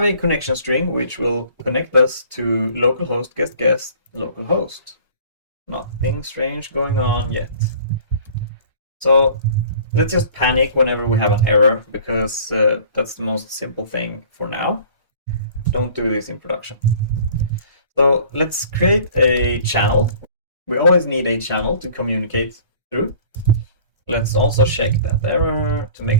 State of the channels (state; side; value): inverted; both; correlation -0.49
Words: a connection string which will connect us to localhost guest localhost. Nothing strange going on yet. So let's just panic whenever we have an error, because that's the most simple thing for now. Don't do this in production. So let's create a channel. We always need a channel to communicate through. Let's also check that error to